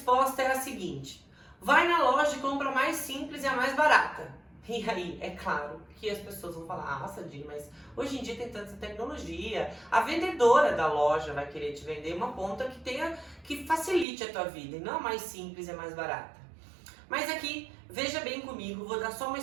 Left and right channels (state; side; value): drops out; left; at 14.1 s